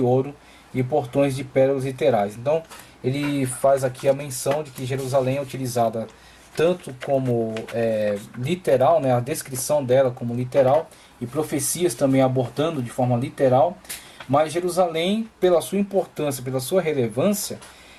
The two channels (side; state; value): both; identical; correlation 1.00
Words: ouro e portões de pérolas literais. Então, ele faz aqui a menção de que Jerusalém é utilizada tanto como literal, né, a descrição dela como literal, e profecias também abordando de forma literal, mas Jerusalém, pela sua importância, pela sua relevância,